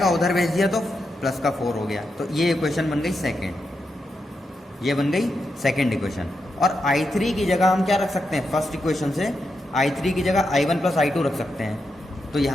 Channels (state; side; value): normal; both; correlation 0.85